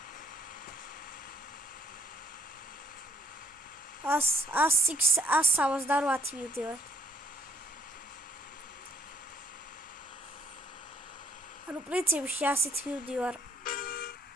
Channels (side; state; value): both; normal; correlation 0.66